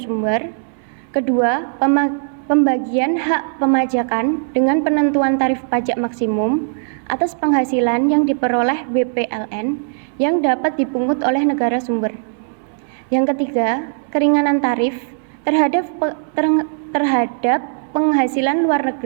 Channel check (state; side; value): silent; left; 67 dB below the other